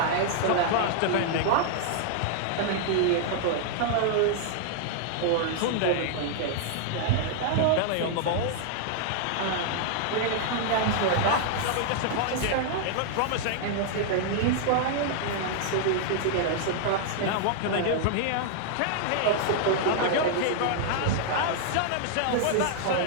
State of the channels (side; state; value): both; different; correlation -0.01